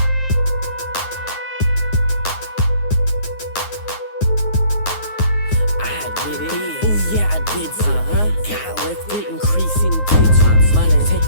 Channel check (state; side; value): late; right; 9.5 ms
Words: Got lifted, increasing digits. Money, take